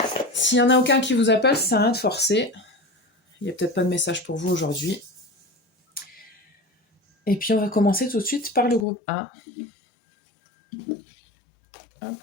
S'il n'y en a aucun qui vous appelle, ça sert à rien de forcer. Il n'y a peut-être pas de message pour vous aujourd'hui. Et puis, on va commencer tout de suite par le groupe 1. Hop.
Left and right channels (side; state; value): right; drops out; at 8.8 s